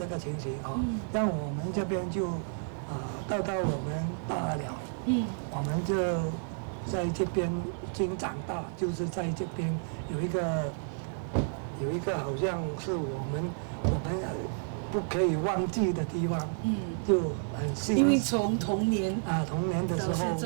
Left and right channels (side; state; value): left; silent; digital silence